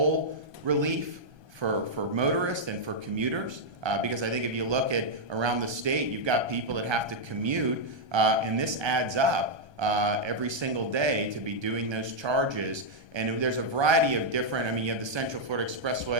relief for motorists and for commuters. Because I think if you look at around the state, you've got people that have to commute, and this adds up every single day to be doing those charges. And there's a variety of different, I mean, you have the Central Florida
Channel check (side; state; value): left; late; 1.3 ms